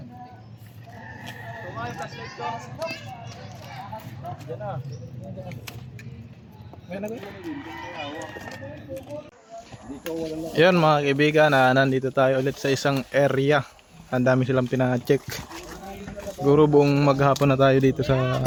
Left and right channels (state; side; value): identical; both; correlation 1.00